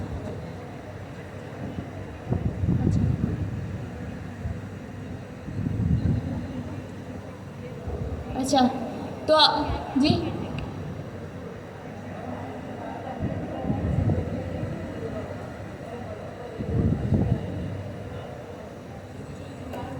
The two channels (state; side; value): identical; both; correlation 1.00